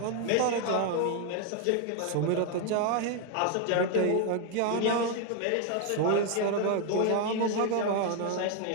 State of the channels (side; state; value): both; different; correlation 0.01